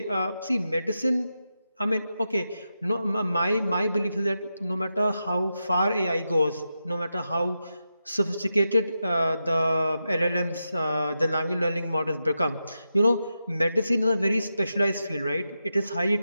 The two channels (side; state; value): both; inverted; correlation -0.88